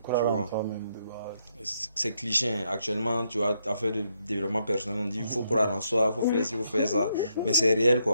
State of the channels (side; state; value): both; inverted; correlation -0.76